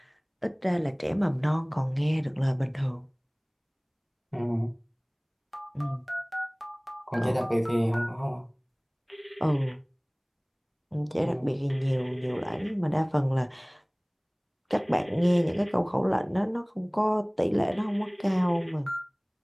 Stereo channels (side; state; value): both; identical; correlation 1.00